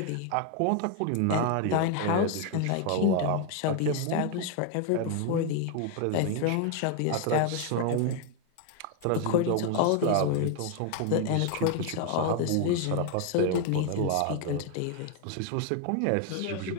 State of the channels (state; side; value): different; both; correlation 0.00